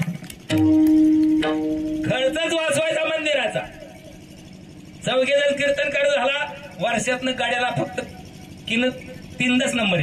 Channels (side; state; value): both; identical; correlation 1.00